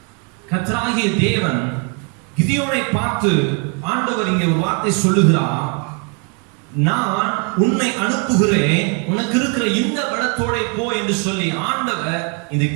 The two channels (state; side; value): quieter; left; 36.6 dB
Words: கர்த்தராகிய தேவன் கிதியோனை பார்த்து ஆண்டவர் இங்கே ஒரு வார்த்தை சொல்லுகிறார், நான் உன்னை அனுப்புகிறேன், உனக்கு இருக்கிற இந்த பலத்தோட போ என்று சொல்லி ஆண்டவர் இந்த